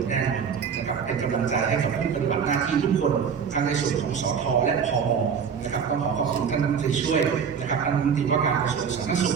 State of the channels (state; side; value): quieter; left; 6.8 dB